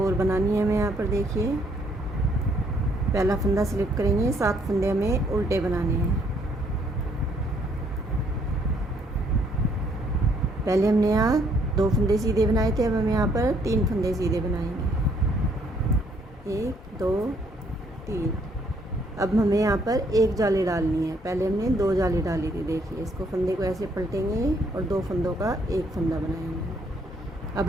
और बनानी है हमें यहाँ पर। देखिए पहला फंदा स्लिप करेंगे, 7 फंदे हमें उल्टे बनाने हैं। पहले हमने यहाँ 2 फंदे सीधे बनाए थे, अब हम यहाँ पर 3 फंदे सीधे बनाएंगे। 1 2 3। अब हमें यहाँ पर एक जाली डालनी है, पहले हमने 2 जाली डाली थी। देखिए इसको फंदे को ऐसे पलटेंगे और 2 फंदों का एक फंदा बनाएंगे। अब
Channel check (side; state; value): both; normal; correlation 0.68